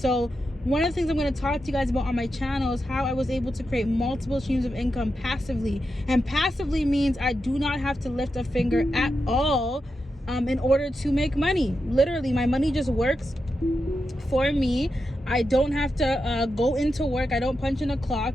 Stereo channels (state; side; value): normal; both; correlation 0.88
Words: one of the things I'm going to talk to you guys about on my channel is how I was able to create multiple streams of income passively. And passively means I do not have to lift a finger at all in order to make money. Literally, my money just works for me. I don't have to go into work. I don't punch in a